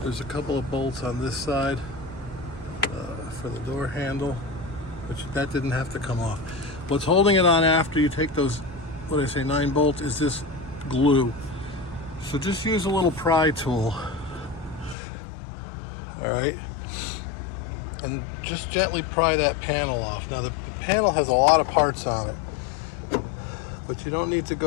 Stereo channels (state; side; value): drops out; right; at 15.0 s